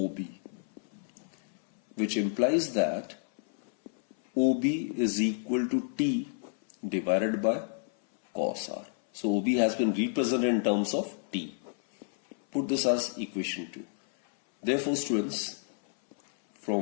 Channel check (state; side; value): silent; right; 58 dB below the other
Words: which implies that OB is equal to T divided by cos R. So OB has been represented in terms of T. Put this as equation 2. Therefore, students,